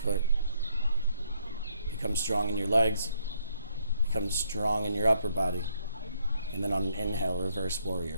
foot. Become strong in your legs, become strong in your upper body. And then on an inhale, reverse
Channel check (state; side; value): inverted; both; correlation -0.70